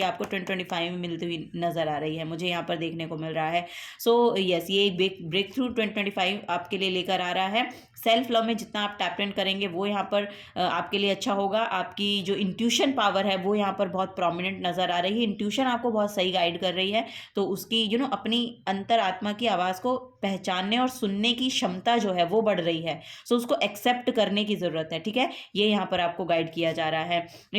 आपको 2025 में मिलती हुई नजर आ रही है, मुझे यहाँ पर देखने को मिल रहा है। सो यस, ये एक ब्रेक थ्रू 2025 आपके लिए लेकर आ रहा है। सेल्फ लव में जितना आप टैप इन करेंगे वो यहाँ पर आपके लिए अच्छा होगा। आपकी जो इंट्यूशन पावर है वो यहाँ पर बहुत प्रोमिनेंट नज़र आ रही है। इंट्यूशन आपको बहुत सही गाइड कर रही है, तो उसकी अपनी अंतर आत्मा की आवाज़ को पहचानने और सुनने की क्षमता जो है वो बढ़ रही है। सो उसको एक्सेप्ट करने की ज़रूरत है, ठीक है। ये यहाँ पर आपको गाइड किया जा रहा है।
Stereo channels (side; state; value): both; identical; correlation 1.00